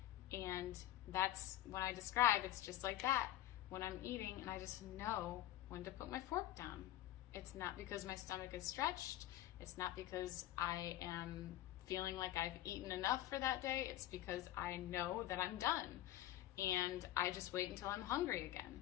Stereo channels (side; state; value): right; quieter; 13.9 dB